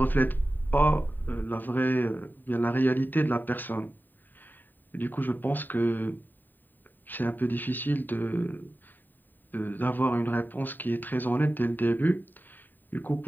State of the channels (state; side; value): late; right; 0.090 ms